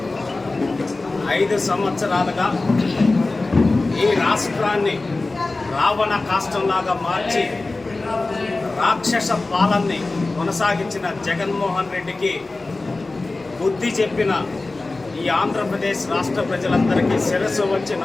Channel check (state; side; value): quieter; right; 3.3 dB